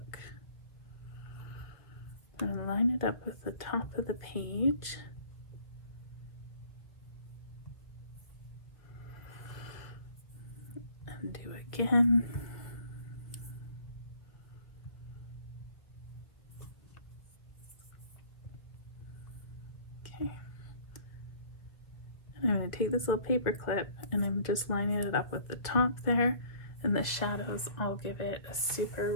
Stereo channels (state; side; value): late; right; 1.5 ms